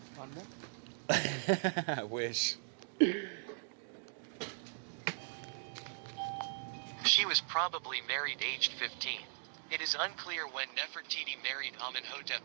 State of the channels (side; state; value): left; silent; digital silence